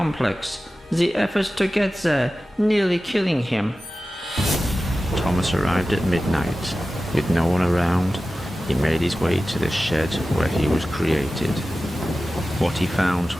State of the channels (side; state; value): both; normal; correlation 0.95